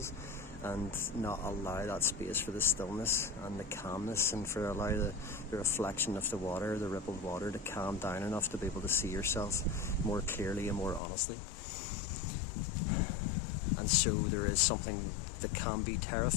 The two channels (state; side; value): drops out; right; at 11.0 s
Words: and not allow that space for the stillness and the calmness, and for allow the reflection of the water, the rippled water, to calm down enough to be able to see yourself more clearly and more honestly. And so there is something that can be